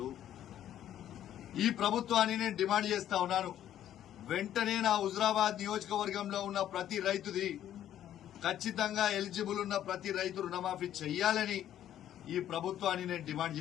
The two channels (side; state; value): right; quieter; 11.3 dB